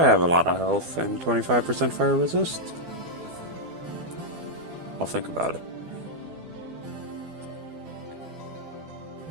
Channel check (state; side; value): late; left; 12 ms